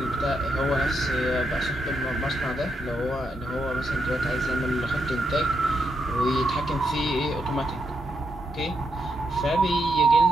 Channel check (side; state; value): both; normal; correlation 0.81